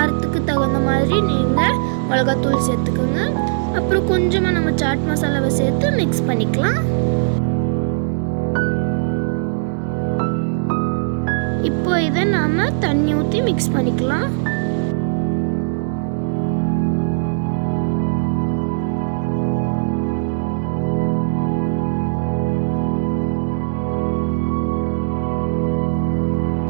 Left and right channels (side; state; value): left; silent; digital silence